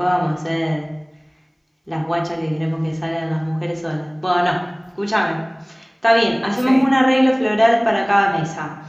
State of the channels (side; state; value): both; identical; correlation 1.00